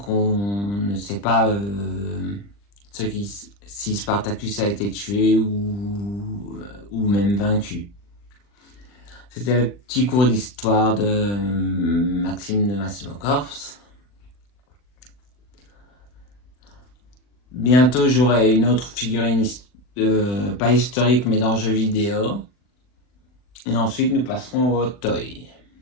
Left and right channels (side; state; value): right; late; 40 ms